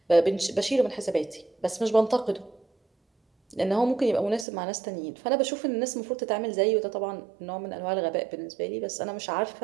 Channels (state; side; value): drops out; left; at 4.5 s